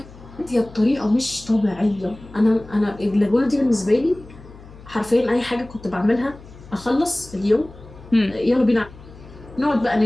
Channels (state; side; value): noise; left; hum, 20 dB below the sound